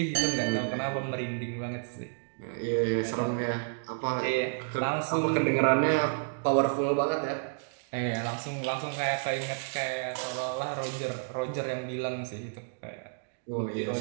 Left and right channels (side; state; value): left; silent; digital silence